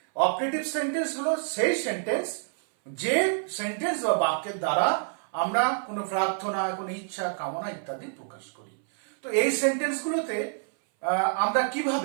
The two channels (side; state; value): left; silent; 58 dB below the other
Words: অপটেটিভ সেন্টেন্স হলো সেই সেন্টেন্স যে সেন্টেন্স বা বাক্যের দ্বারা আমরা কোনো প্রার্থনা, কোনো ইচ্ছা, কামনা ইত্যাদি প্রকাশ করি। তো এই সেন্টেন্স গুলোতে আমরা